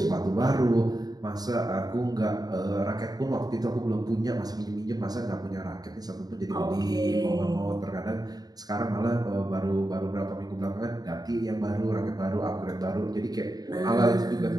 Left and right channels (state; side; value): late; left; 0.19 ms